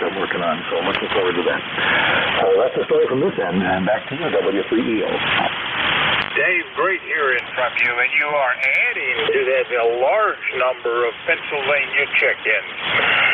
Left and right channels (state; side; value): identical; both; correlation 1.00